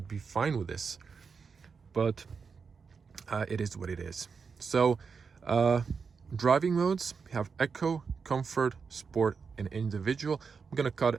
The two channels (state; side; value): quieter; left; 5.5 dB